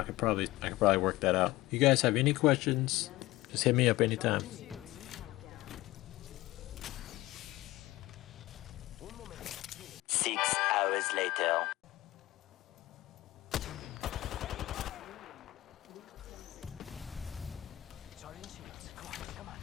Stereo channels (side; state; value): right; quieter; 17.7 dB